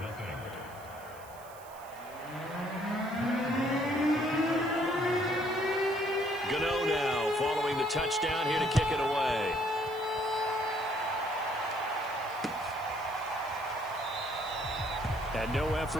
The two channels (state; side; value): noise; right; hiss, 22 dB below the sound